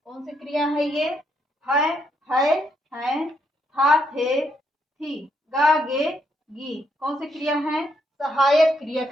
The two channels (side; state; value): both; normal; correlation 0.76